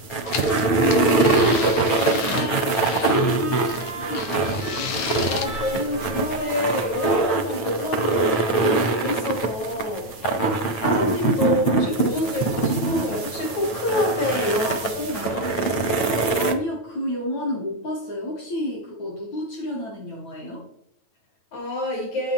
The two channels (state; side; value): late; right; 9.0 ms